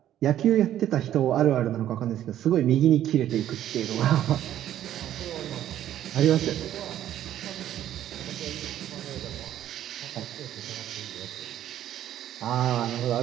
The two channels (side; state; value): left; quieter; 11.7 dB